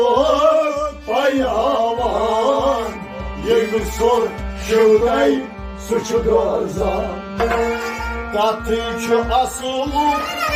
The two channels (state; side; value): identical; both; correlation 1.00